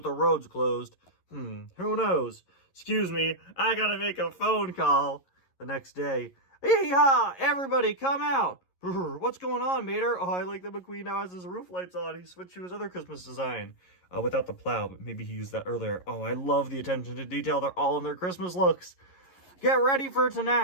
the roads closed. Who knows? Excuse me, I gotta make a phone call. The next day. Yee-haw! Everybody come out! What's going on, Mater? Oh, I like that McQueen now has his roof lights on. He switched to his other Christmas design. Without the plow, but maybe he used that earlier. Oh, I love the attention to detail. They're all in their Christmas looks. Get ready for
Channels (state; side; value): late; right; 11 ms